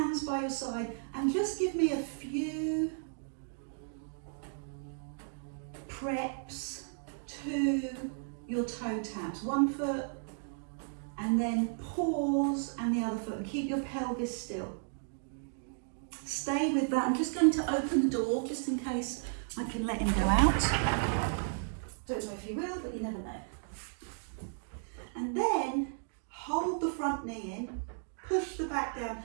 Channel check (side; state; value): left; silent; digital silence